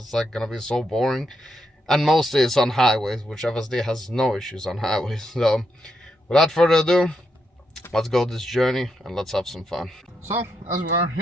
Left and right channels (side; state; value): both; normal; correlation 0.81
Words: like gonna be so boring. And mostly it's on highways, which FSD has no issues on highways. So without further ado, let's go this journey and let's have some fun. So as we are